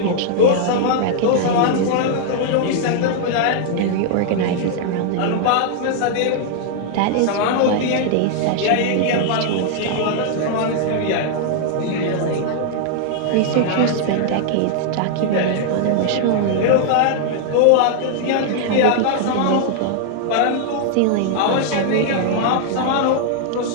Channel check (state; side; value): different; both; correlation -0.01